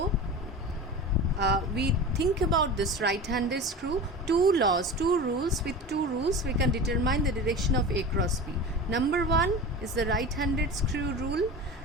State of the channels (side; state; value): both; normal; correlation 0.31